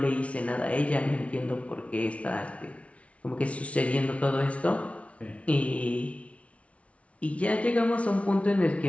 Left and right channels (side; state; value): right; late; 0.063 ms